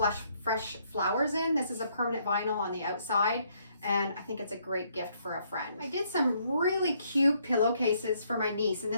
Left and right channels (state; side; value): inverted; both; correlation -0.70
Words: flowers in. This is a permanent vinyl on the outside, and I think it's a great gift for a friend. I did some really cute pillowcases for my niece, and